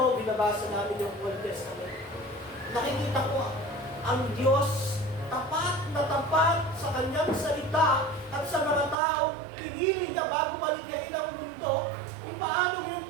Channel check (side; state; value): left; drops out; at 9.0 s